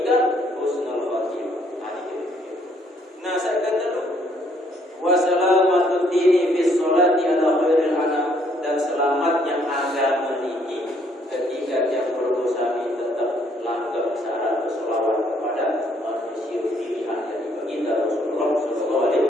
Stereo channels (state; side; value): normal; both; correlation 0.67